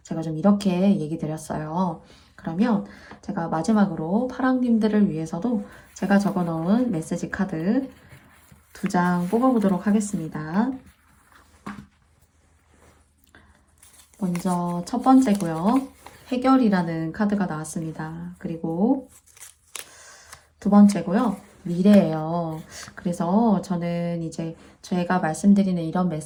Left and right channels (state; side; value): identical; both; correlation 1.00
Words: 제가 좀 이렇게 얘기 드렸어요. 그러면 제가 마지막으로 파랑님들을 위해서도 제가 적어 놓은 메시지 카드 2장 뽑아보도록 하겠습니다. 먼저 첫 번째고요. 해결이라는 카드가 나왔습니다. 그리고 두 번째고요. 미래예요. 그래서 저는 이제 제가 말씀드리는 이런